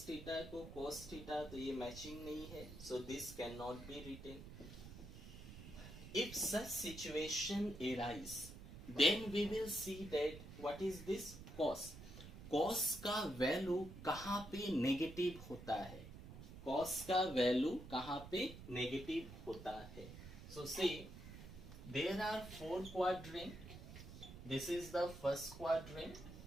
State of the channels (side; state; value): right; noise; rumble, 13 dB below the sound